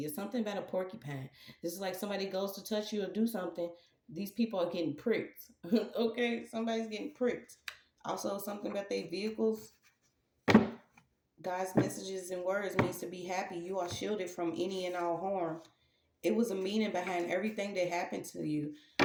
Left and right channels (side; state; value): both; identical; correlation 1.00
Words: It's something about a porcupine. This is like somebody goes to touch you or do something. These people are getting pricked. Okay, somebody's getting pricked. Also, something about their vehicles. God's messages and words means to be happy. You are shielded from any and all harm. It was a meaning behind everything that happened to you,